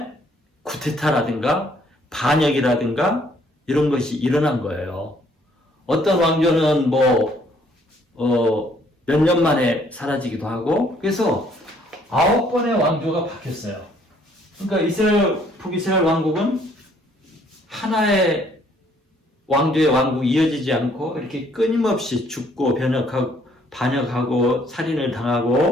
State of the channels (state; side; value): normal; both; correlation 0.64